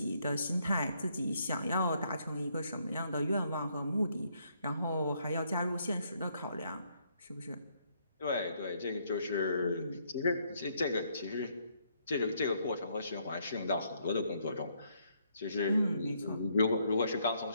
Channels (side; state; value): both; inverted; correlation -0.71